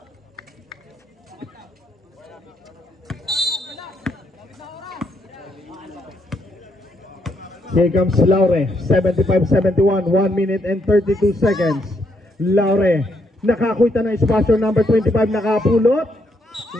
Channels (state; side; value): normal; both; correlation 0.75